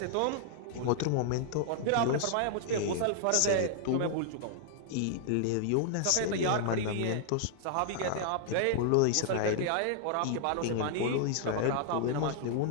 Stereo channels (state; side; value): different; both; correlation -0.01